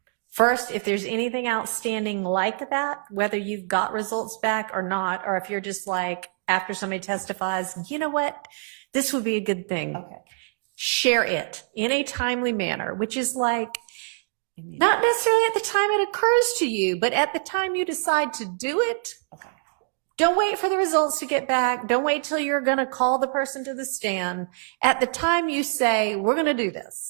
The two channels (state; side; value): silent; left; digital silence